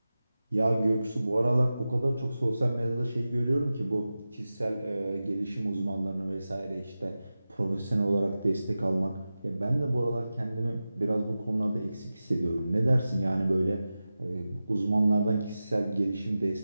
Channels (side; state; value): both; inverted; correlation -0.94